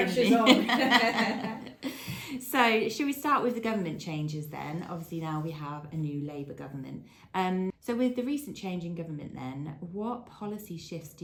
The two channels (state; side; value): identical; both; correlation 1.00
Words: to be. On. So should we start with the government changes then? Obviously now we have a new Labour government. So with the recent change in government then, what policy shifts do